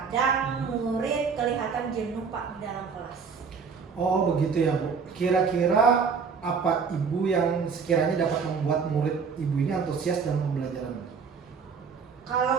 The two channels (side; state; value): left; quieter; 5.7 dB